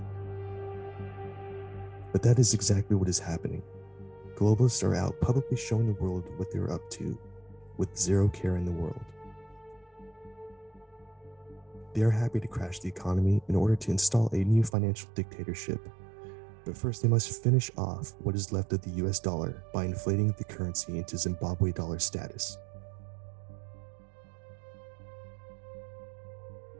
But that is exactly what is happening. Globalists are out publicly showing the world what they're up to, with zero care in the world. They are happy to crash the economy in order to install a new financial dictatorship. But first, they must finish off what is left of the US dollar by inflating the currency into Zimbabwe dollar status.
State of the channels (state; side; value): drops out; left; at 14.7 s